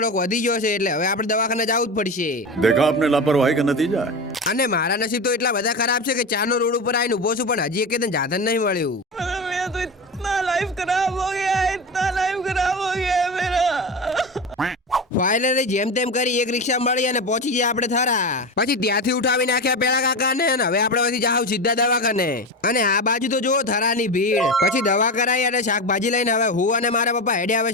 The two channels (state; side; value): normal; both; correlation 0.22